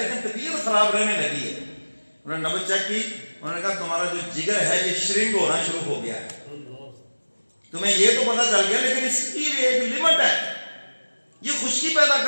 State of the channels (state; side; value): inverted; both; correlation -1.00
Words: طبیعت خراب رہنے لگی ہے۔ انہوں نے نبض چیک کی، انہوں نے کہا تمہارا جو جگر ہے یہ شرنک ہونا شروع ہو گیا ہے، تمہیں یہ تو پتا چل گیا لیکن اس کی بھی ایک لمٹ ہے، یہ خشکی پیدا